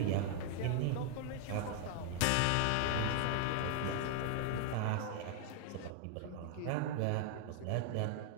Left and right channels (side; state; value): both; different; correlation 0.00